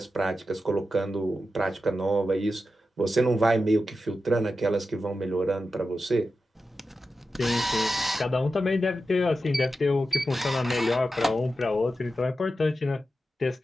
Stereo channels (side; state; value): both; normal; correlation 0.91